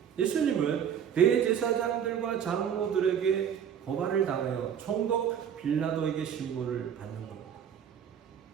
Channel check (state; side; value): quieter; left; 8.5 dB